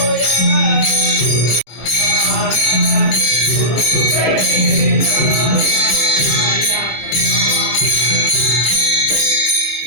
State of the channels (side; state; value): right; late; 26 ms